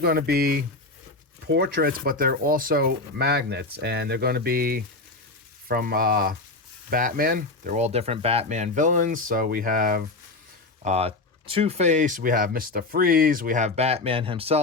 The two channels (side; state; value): right; quieter; 3.3 dB